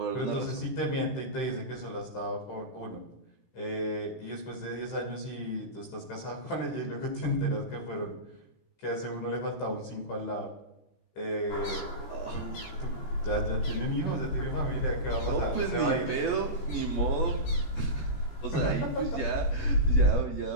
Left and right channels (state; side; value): late; right; 17 ms